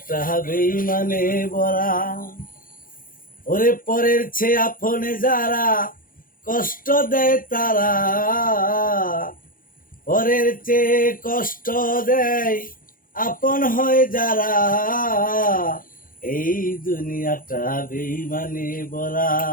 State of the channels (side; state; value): right; late; 0.40 ms